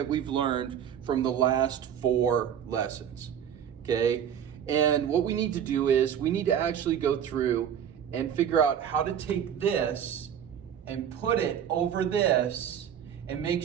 we've learned from the last 4 lessons, okay? And what we need to do is we need to actually go through and figure out how to take this and put it over this and make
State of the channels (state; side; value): quieter; left; 9.0 dB